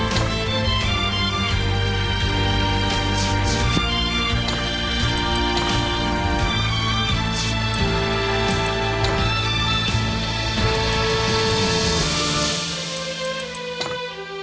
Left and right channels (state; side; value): identical; both; correlation 1.00